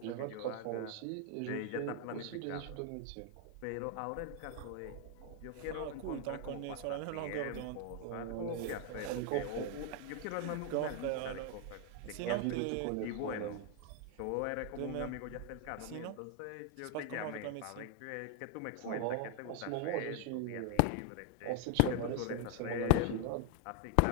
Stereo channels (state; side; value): different; both; correlation 0.00